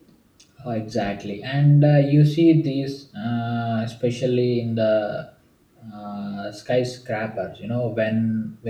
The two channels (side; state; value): both; identical; correlation 1.00